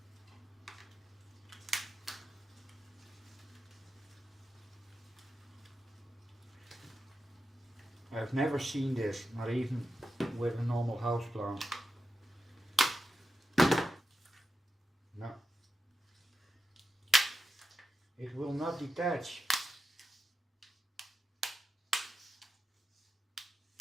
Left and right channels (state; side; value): normal; both; correlation 0.89